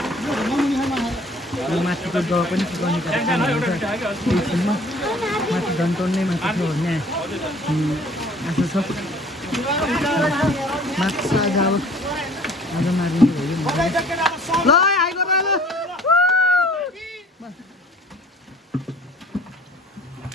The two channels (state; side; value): normal; both; correlation 0.52